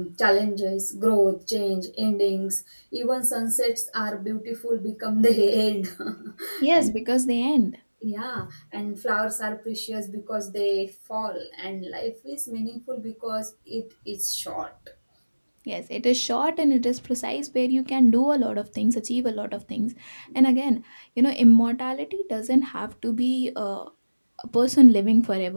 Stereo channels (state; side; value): inverted; both; correlation -1.00